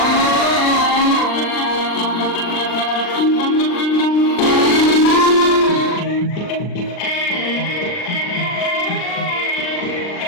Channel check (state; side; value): late; right; 39 ms